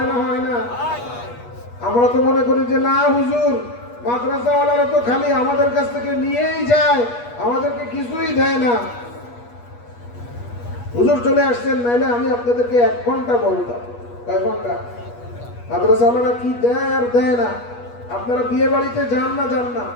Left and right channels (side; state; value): right; late; 8.3 ms